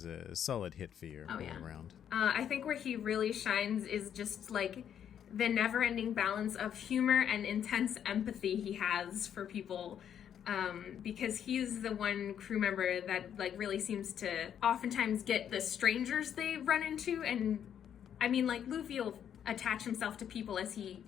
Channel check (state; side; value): quieter; right; 9.1 dB